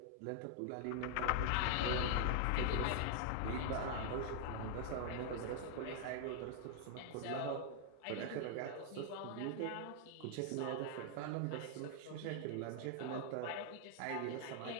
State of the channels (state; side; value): different; both; correlation 0.00